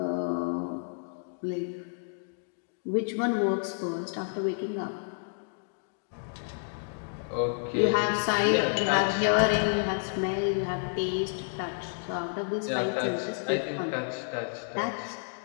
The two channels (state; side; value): silent; right; digital silence